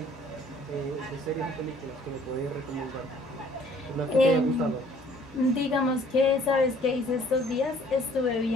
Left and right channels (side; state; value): both; normal; correlation 0.58